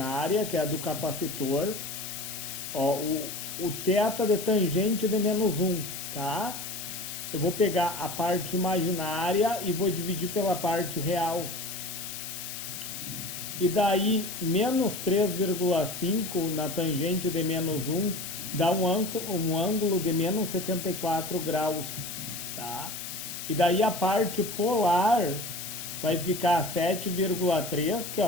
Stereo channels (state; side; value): noise; left; hiss, 8 dB below the sound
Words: que é a do capacitor, ó, o θ de tangente de menos 1, tá? Eu vou pegar a parte imaginária e vou dividir pela parte real. E daí, menos 3,5 na tangente de menos 1 dá um ângulo de menos 74 graus. Tá? E daí a parte polar vai ficar 7,3, que é